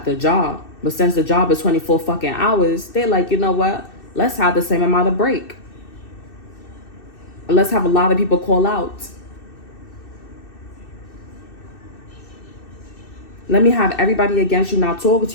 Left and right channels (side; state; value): right; late; 2.6 ms